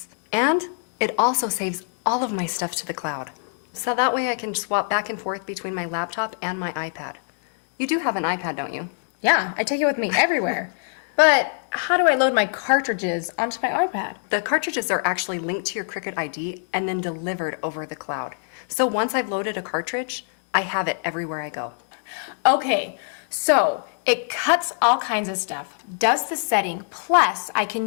And it also saves all of my stuff to the cloud. So that way I can swap back and forth between my laptop and my iPad. You do have an iPad, don't you? Yeah, I take it with me everywhere. But how do I load my cartridges onto my iPad? The cartridges are actually linked to your Cricut ID and then delivered over the cloud. So once I've loaded a cartridge, I have it everywhere I go. Okay, so it cuts all kinds of stuff, does the setting, plus I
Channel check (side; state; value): right; silent; digital silence